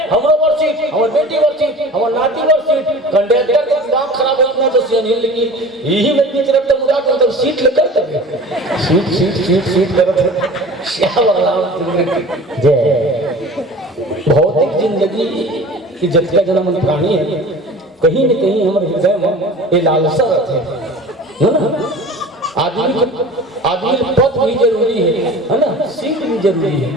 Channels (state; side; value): normal; both; correlation 0.40